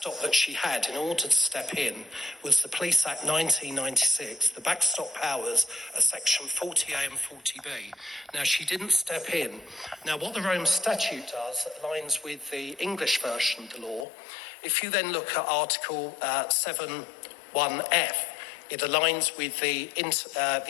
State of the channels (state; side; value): drops out; right; at 14.1 s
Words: that she had in order to step in was the Police Act 1996. The backstop powers are section 40A and 40B. Now, she didn't step in. Now, what the Rome Statute does that aligns with the English version of the law, if you then look at Article 7.1f, It aligns with the